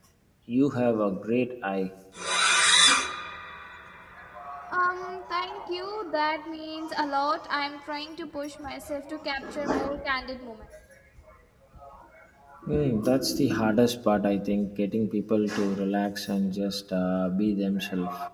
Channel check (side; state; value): both; identical; correlation 1.00